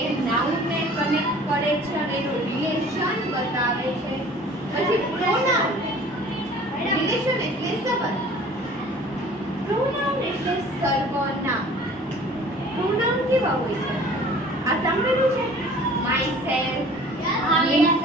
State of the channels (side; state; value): both; normal; correlation 0.48